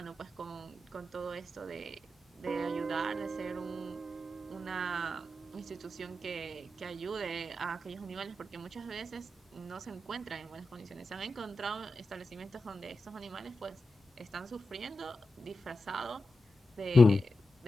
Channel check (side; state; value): both; normal; correlation 0.90